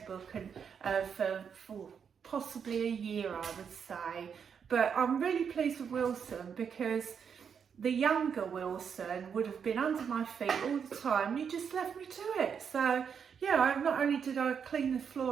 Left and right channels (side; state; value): left; quieter; 7.0 dB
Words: book for possibly a year, I would say. But I'm really pleased with Wilson, because the younger Wilson would have been under my feet all the time. You just left me to it. So yeah, not only did I clean the